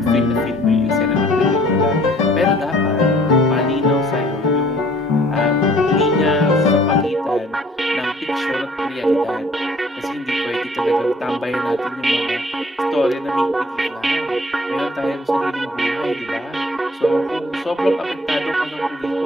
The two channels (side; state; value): both; normal; correlation 0.57